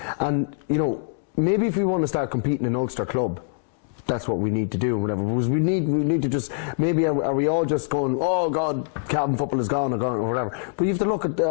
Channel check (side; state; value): right; silent; digital silence